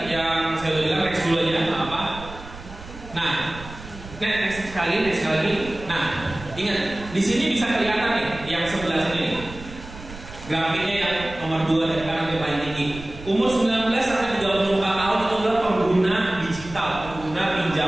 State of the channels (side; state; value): right; noise; rumble, 15 dB below the sound